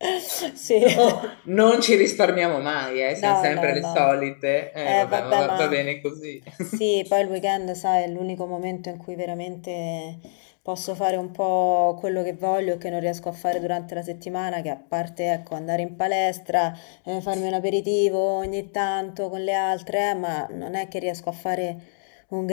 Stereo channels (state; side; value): silent; right; digital silence